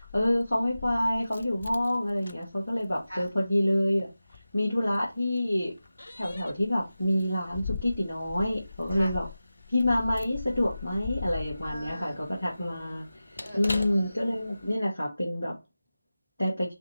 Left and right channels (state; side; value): inverted; both; correlation -0.94